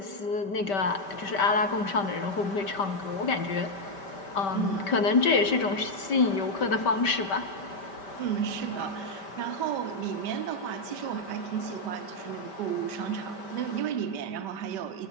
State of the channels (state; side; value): late; right; 5.1 ms